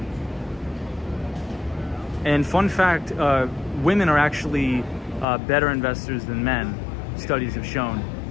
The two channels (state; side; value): drops out; right; at 5.2 s